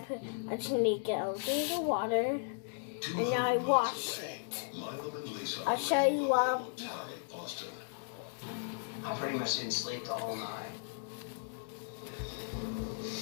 I just need to get out of the water. And now I wash it. I'll show you what. I pretty much didn't sleep the whole night.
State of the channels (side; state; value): right; silent; digital silence